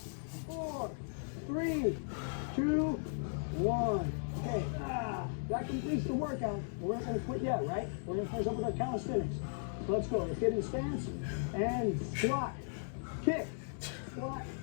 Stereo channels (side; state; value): right; silent; digital silence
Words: 3, 2, 1. Okay. That completes the workout. We're not going to quit yet, right? We're going to finish up with our calisthenics. So let's go. Let's get in stance and squat, kick, squat,